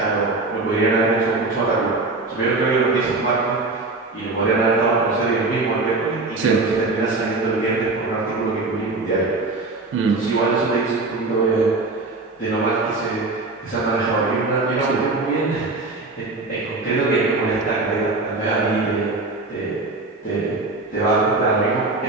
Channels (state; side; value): quieter; left; 3.4 dB